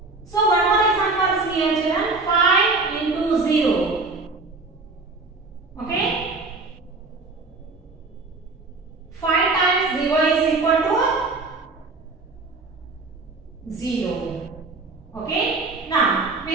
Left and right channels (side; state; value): left; quieter; 3.6 dB